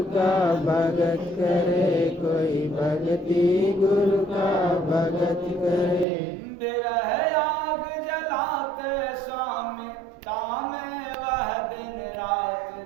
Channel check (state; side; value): drops out; left; at 6.1 s